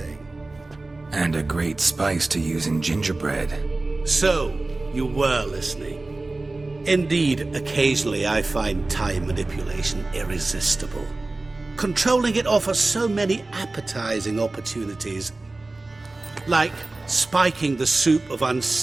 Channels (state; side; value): quieter; left; 3.1 dB